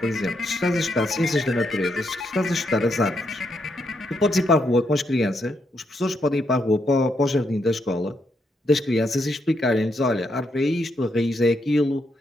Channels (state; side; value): normal; both; correlation 0.79